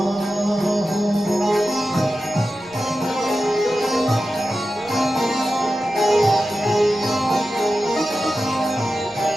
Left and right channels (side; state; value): right; noise; rumble, 29 dB below the sound